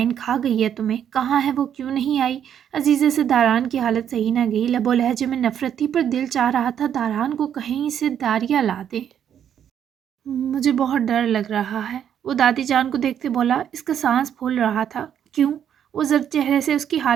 खा गई है तुम्हें? कहाँ है वो, क्यों नहीं आई? अजीज़े से दारान की हालत सही ना गई। लबो लहजे में नफरत थी, पर दिल चाह रहा था दारान को कहीं से दारिया ला दे। मुझे बहुत डर लग रहा है, वो दादी जान को देखते बोला। इसका सांस फूल रहा था। क्यों? वो जर्द चेहरे से उसकी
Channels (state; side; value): quieter; left; 9.2 dB